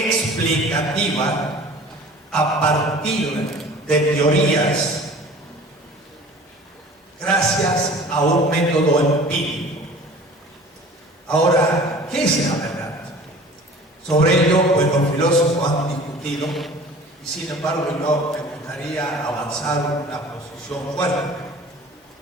a partir de teorías gracias a un método empírico. Ahora, ¿qué es la verdad? Sobre ello, pues los filósofos han discutido, y sin embargo yo me gustaría avanzar una posición fuerte.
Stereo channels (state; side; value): normal; both; correlation 0.44